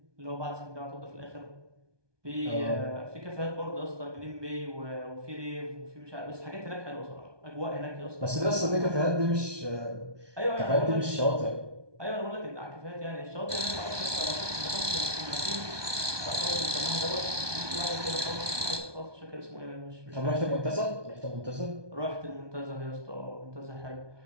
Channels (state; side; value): late; left; 1.2 ms